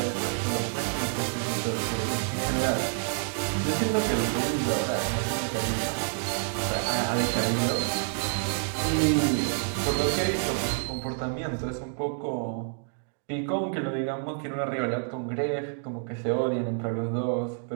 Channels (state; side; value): silent; left; 59 dB below the other